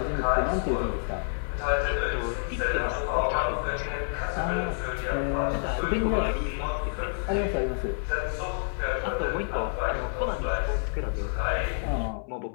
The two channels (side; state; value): right; silent; 59 dB below the other